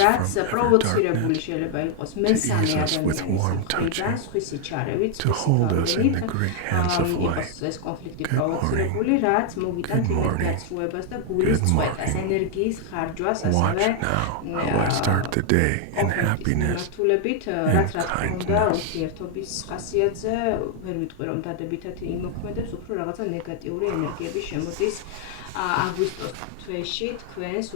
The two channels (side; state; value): both; different; correlation 0.00